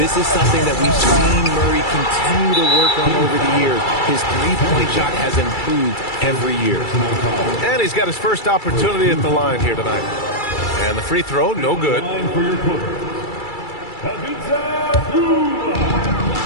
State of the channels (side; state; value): right; late; 2.3 ms